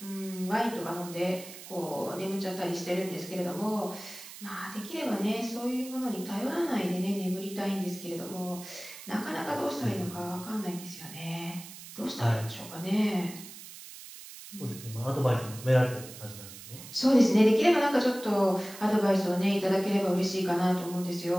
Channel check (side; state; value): right; noise; hiss, 14 dB below the sound